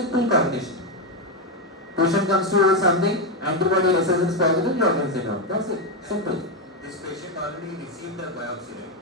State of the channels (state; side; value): normal; both; correlation 0.06